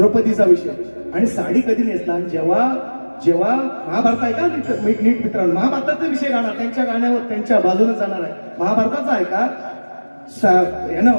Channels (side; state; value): both; inverted; correlation -1.00